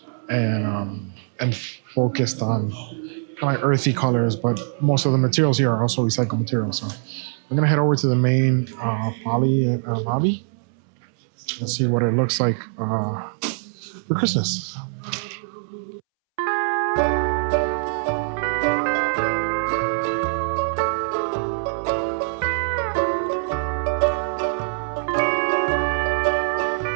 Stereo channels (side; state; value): left; silent; 63 dB below the other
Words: and focused on kind of earthy colors, but most of the materials here are also recycled materials. So we're gonna head over to the main poly lobby and see what it looks like for Christmas.